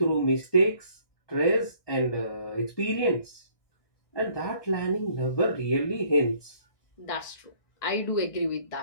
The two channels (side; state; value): right; late; 1.6 ms